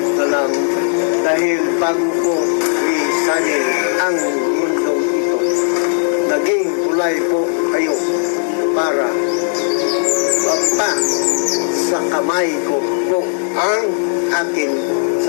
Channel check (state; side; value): silent; right; 69 dB below the other